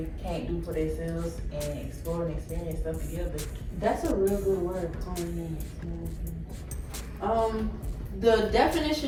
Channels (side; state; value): both; identical; correlation 1.00